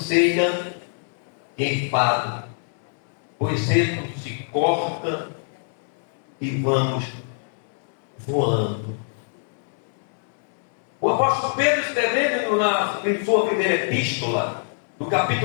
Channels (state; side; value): silent; right; 63 dB below the other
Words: e enfado, pois cedo se corta e vamos voando. O apóstolo Pedro, escrevendo em sua primeira epístola, no